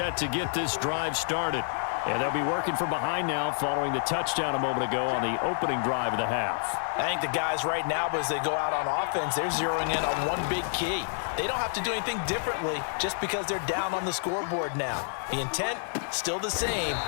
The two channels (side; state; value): right; silent; digital silence